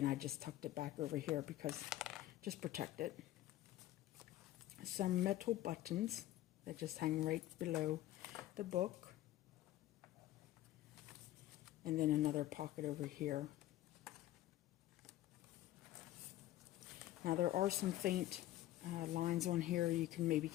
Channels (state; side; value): quieter; right; 14.5 dB